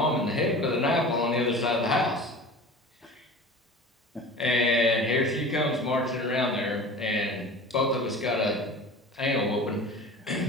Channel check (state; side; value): normal; both; correlation 0.38